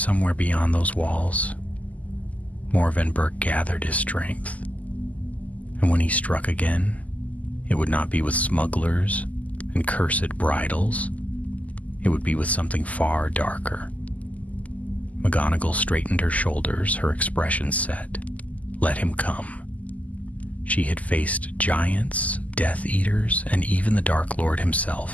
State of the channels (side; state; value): right; late; 0.074 ms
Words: beyond those walls, Morven Burke gathered his strength, and when he struck again, it would not be with smugglers and cursed bridles. It would be with something far darker. McGonagall straightened her shoulders, her expression set. Let him come. She had faced giants, Death Eaters, and even the Dark Lord